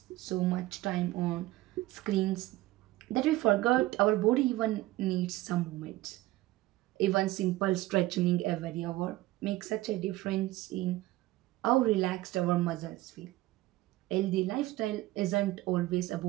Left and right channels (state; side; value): quieter; left; 17.4 dB